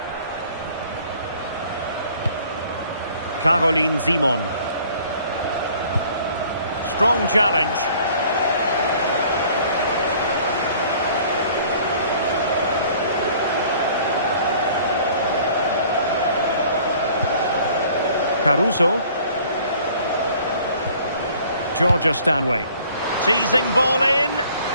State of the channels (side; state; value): both; inverted; correlation -0.54